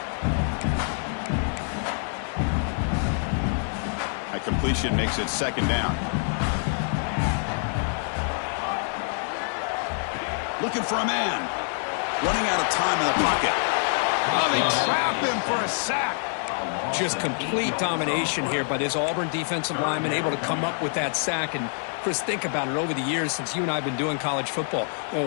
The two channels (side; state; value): right; silent; 61 dB below the other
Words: completion makes it second down. Looking for a man. Running out of time in the pocket. Oh, they trap him for a sack. Just complete domination here by this Auburn defensive lineman, able to come up with that sack. And Chris, think about it, over the years since you and I have been doing college football,